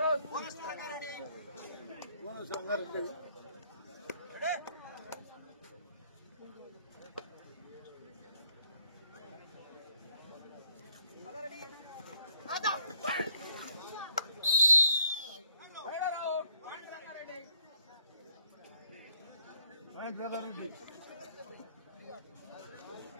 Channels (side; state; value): both; inverted; correlation -0.68